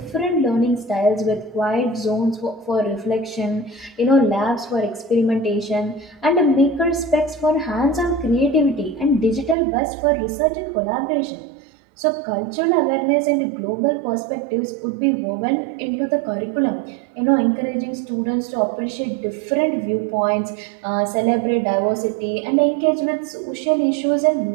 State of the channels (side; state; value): left; drops out; at 9.6 s